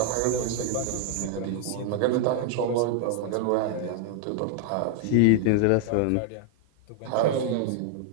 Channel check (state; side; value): different; both; correlation -0.01